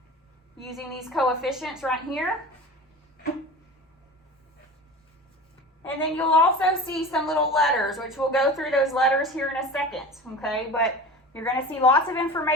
using these coefficients right here. And then you'll also see some little letters, which we'll go through those letters here in a second, okay? But you're going to see lots of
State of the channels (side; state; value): both; normal; correlation 0.35